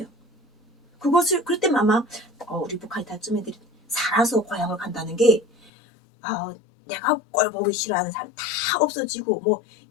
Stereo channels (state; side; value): drops out; right; at 5.7 s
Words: 그럴 때만 아마 우리 북한이타쯤 애들이 살아서 고향을 간다는 게 내가 꼴 보기 싫어하는 사람 다 없어지고 뭐